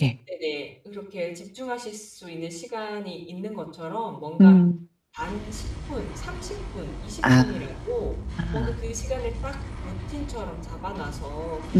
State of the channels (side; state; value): both; identical; correlation 1.00